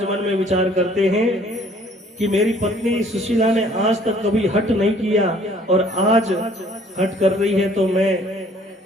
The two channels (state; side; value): normal; both; correlation 0.57